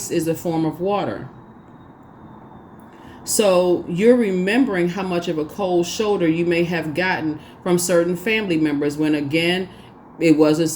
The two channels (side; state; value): both; identical; correlation 1.00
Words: is a form of water. So you're remembering how much of a cold shoulder you may have gotten from certain family members when, again, it wasn't